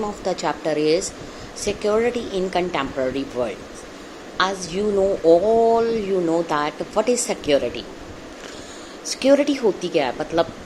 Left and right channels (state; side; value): identical; both; correlation 1.00